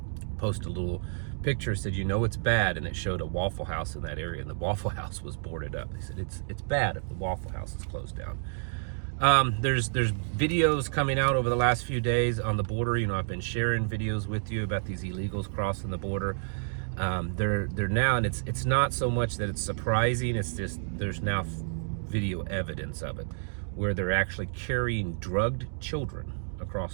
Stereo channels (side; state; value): left; silent; digital silence